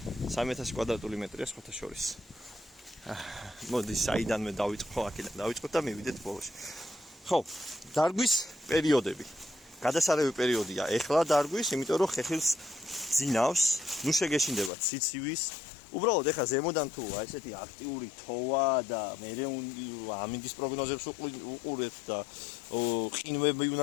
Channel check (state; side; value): drops out; right; at 14.7 s